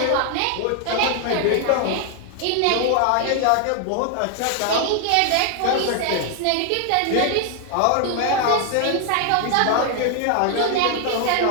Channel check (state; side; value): different; both; correlation 0.00